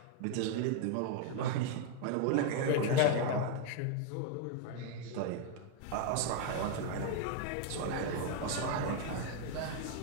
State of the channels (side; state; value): both; different; correlation 0.01